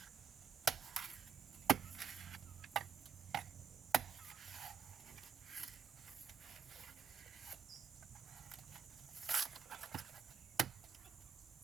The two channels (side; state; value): left; quieter; 6.9 dB